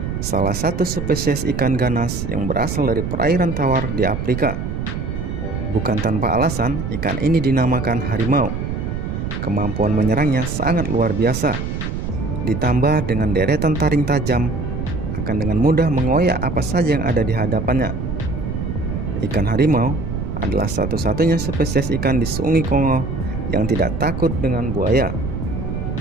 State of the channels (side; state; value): right; noise; rumble, 4 dB below the sound